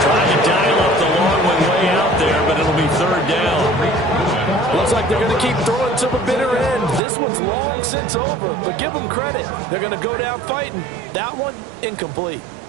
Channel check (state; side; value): drops out; left; at 7.0 s